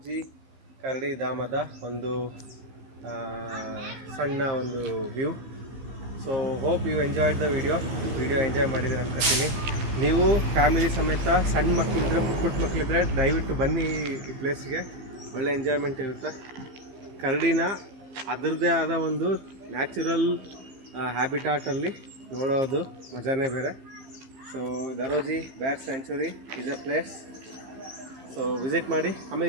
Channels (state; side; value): late; left; 15 ms